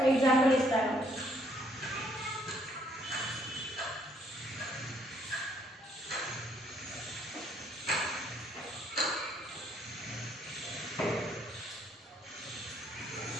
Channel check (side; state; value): both; normal; correlation 0.67